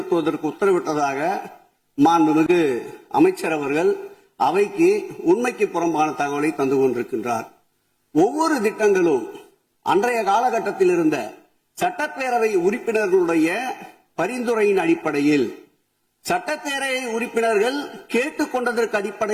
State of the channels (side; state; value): both; identical; correlation 1.00